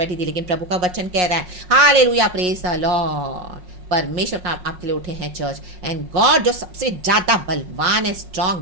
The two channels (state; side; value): late; left; 5.5 ms